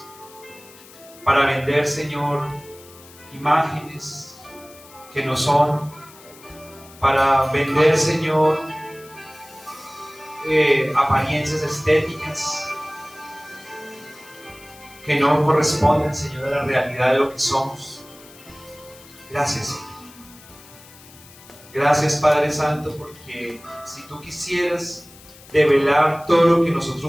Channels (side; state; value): left; noise; hiss, 22 dB below the sound